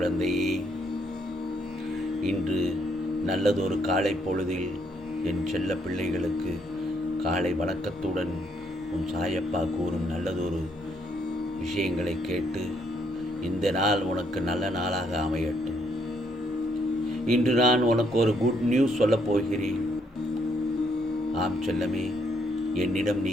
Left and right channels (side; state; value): both; normal; correlation 0.72